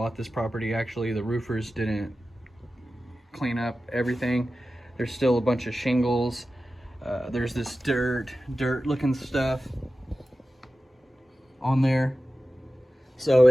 this property, actually the roofers didn't clean up everything. There's still a bunch of shingles. There's this dirt looking stuff on there. So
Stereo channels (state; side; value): normal; both; correlation 0.94